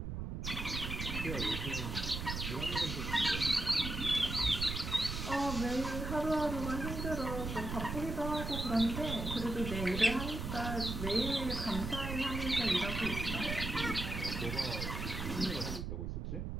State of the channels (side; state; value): right; noise; rumble, 4 dB below the sound